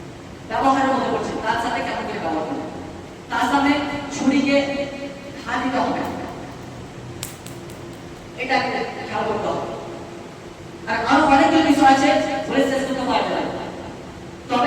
ব্যবহারের মধ্যে পড়ছে। তার সাথে কেমন করে ব্যবহার করবে, তার সামনে ছুরিকে হাত দিতে হবে, এটা খেয়াল করতে হবে। আর আরো অনেকগুলো বিষয় আছে বলে শেষ করতে পারবে না,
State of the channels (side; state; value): both; identical; correlation 1.00